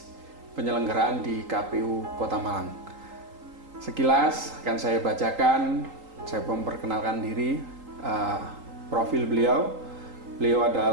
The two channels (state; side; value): late; left; 3.8 ms